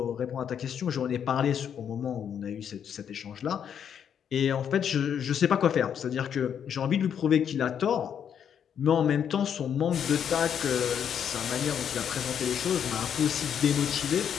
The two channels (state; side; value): quieter; right; 8.4 dB